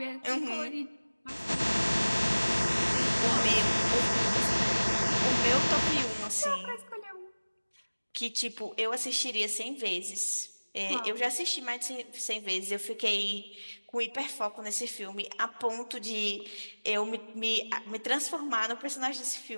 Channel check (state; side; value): inverted; both; correlation -1.00